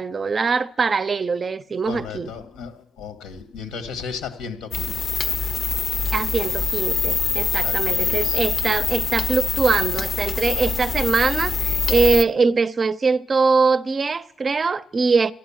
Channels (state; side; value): normal; both; correlation 0.86